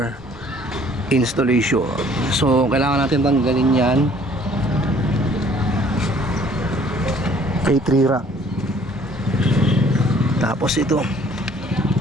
installation. So kailangan natin tanggalin yan kay 3 rack. Tapos ito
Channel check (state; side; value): normal; both; correlation 0.57